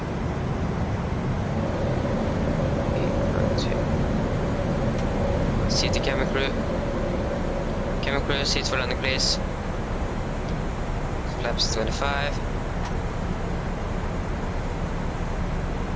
Seat the camera crew. Camera crew, seats for landing please. Flaps 25.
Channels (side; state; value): both; identical; correlation 1.00